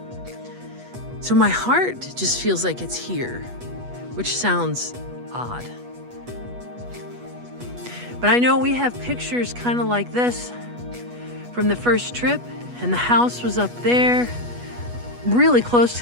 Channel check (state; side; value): late; left; 8.2 ms